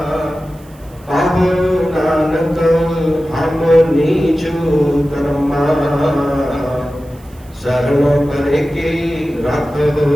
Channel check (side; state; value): right; noise; hiss, 28 dB below the sound